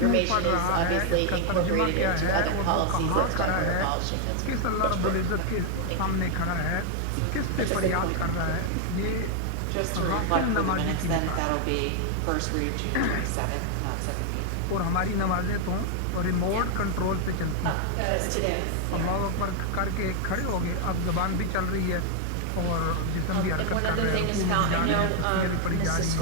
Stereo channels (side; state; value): both; different; correlation 0.01